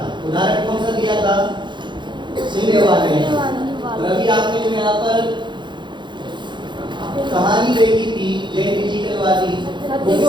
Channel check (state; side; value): late; left; 0.23 ms